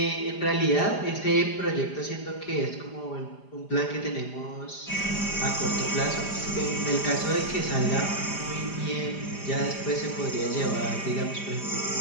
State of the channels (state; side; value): late; right; 5.0 ms